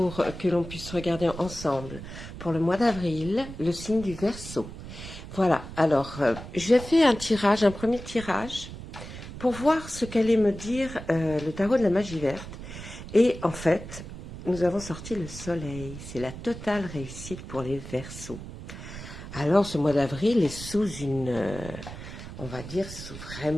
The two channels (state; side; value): noise; right; rumble, 12 dB below the sound